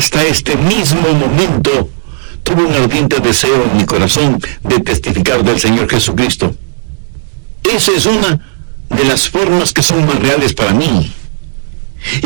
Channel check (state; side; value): silent; left; digital silence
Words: este mismo momento, tuve un ardiente deseo en mi corazón de testificar del Señor Jesucristo. Esa es una de las formas que son más reales para mí.